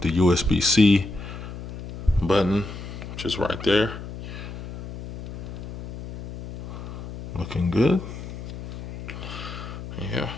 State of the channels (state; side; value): noise; left; hum, 10 dB below the sound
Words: USB-C button, which is right there. Looking good. Yeah.